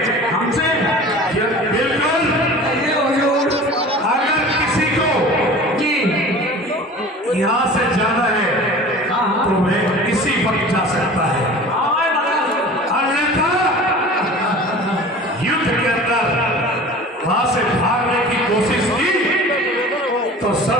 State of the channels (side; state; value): both; normal; correlation 0.40